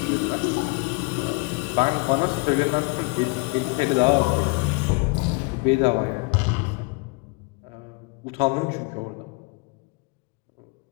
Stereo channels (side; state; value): right; quieter; 29.0 dB